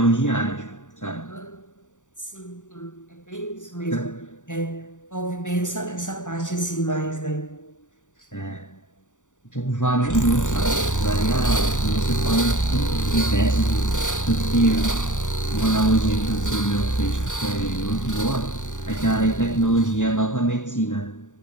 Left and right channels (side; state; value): right; late; 0.86 ms